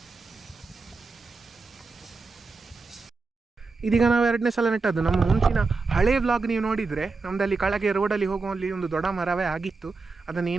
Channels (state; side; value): quieter; left; 4.1 dB